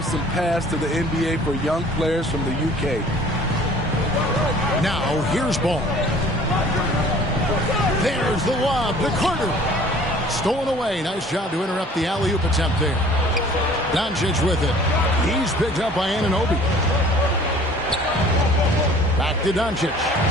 some paths to the NBA for young players from the UK. Now, here's Ball. There's the lob to Carter. Stolen away. Nice job to interrupt the alley-oop attempt there. Doncic with it. He's picked up by Anunoby. Back to Doncic.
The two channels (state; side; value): normal; both; correlation 0.50